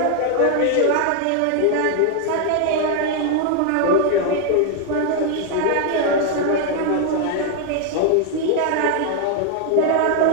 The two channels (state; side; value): different; both; correlation 0.00